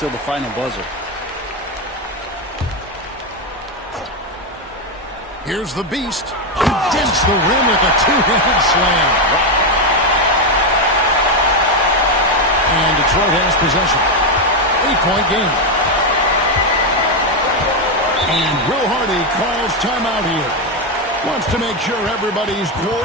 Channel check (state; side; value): normal; both; correlation 0.07